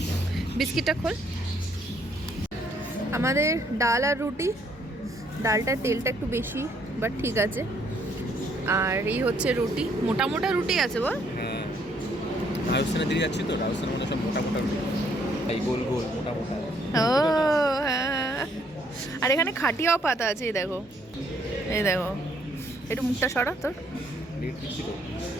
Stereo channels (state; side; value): normal; both; correlation 0.68